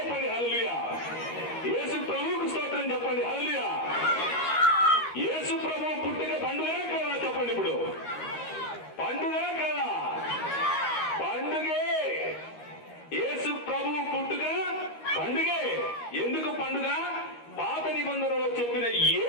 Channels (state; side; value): late; right; 13 ms